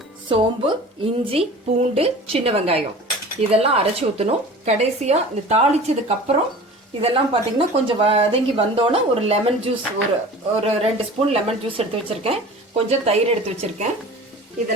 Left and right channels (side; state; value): both; normal; correlation 0.40